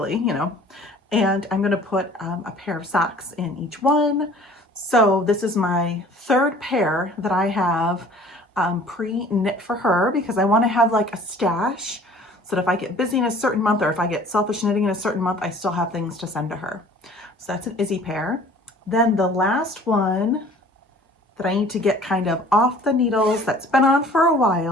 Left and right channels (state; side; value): normal; both; correlation 0.50